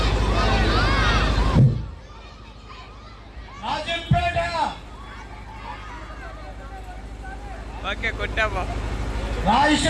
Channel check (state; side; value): identical; both; correlation 1.00